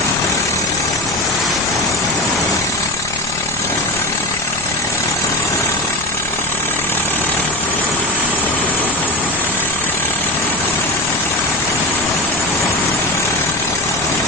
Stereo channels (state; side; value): noise; left; rumble, 17 dB below the sound